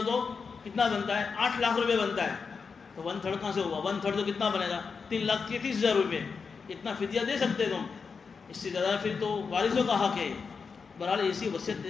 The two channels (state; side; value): quieter; right; 5.3 dB